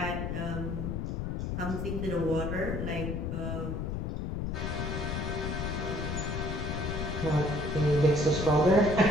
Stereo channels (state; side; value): noise; left; rumble, 2 dB below the sound